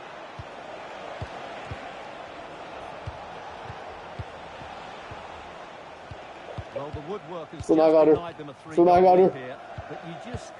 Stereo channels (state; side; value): identical; both; correlation 1.00